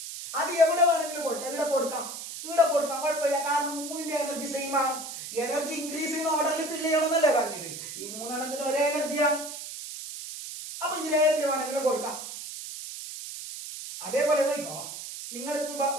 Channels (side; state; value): right; noise; hiss, 9 dB below the sound